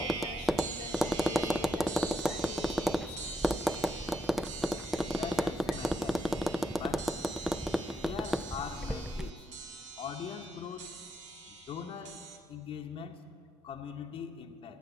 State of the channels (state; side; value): normal; both; correlation 0.80